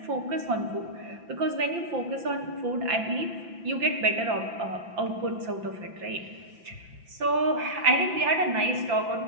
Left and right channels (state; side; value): late; left; 5.9 ms